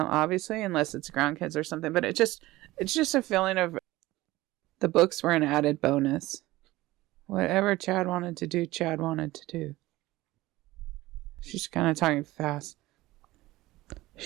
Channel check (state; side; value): quieter; left; 18.3 dB